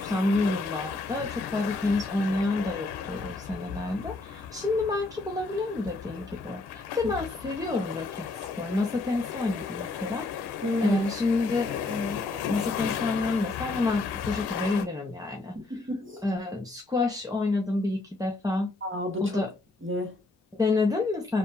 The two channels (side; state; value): right; quieter; 3.0 dB